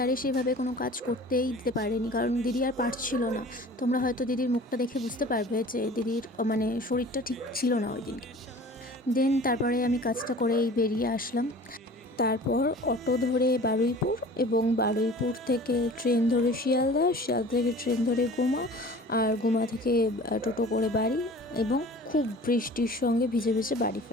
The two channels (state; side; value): normal; both; correlation 0.43